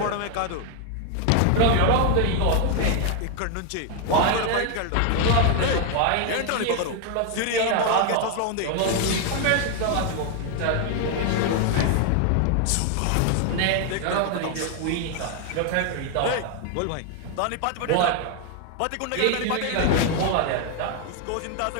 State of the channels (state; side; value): different; both; correlation 0.00